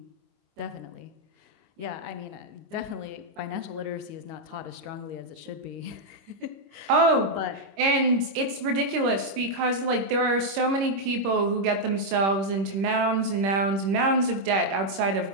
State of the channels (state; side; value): late; left; 26 ms